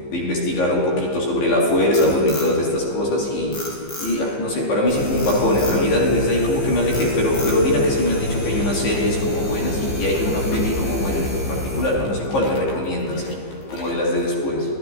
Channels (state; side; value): late; right; 15 ms